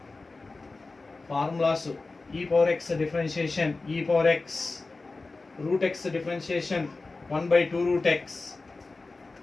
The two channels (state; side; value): quieter; right; 3.6 dB